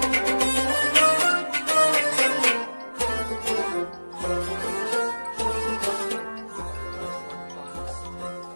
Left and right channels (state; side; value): inverted; both; correlation -1.00